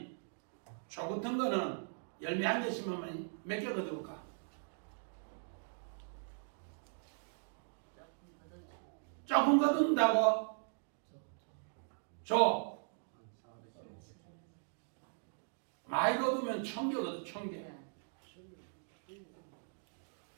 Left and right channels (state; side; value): silent; left; digital silence